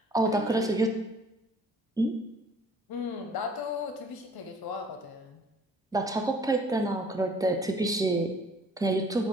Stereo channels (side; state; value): both; normal; correlation 0.55